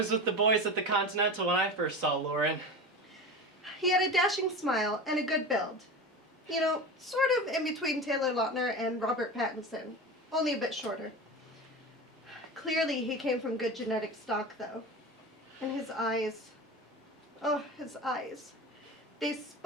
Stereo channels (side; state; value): both; normal; correlation 0.28